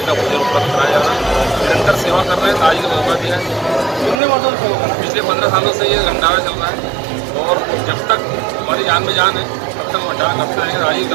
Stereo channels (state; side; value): drops out; left; at 4.2 s